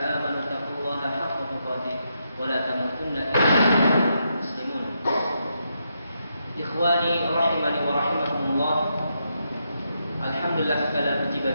اتقوا الله حق تقاته ولا تموتن إلا وأنتم مسلمون Ikhwani rahimani wa rahimakumullah. Alhamdulillah, segala puji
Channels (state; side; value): inverted; both; correlation -0.81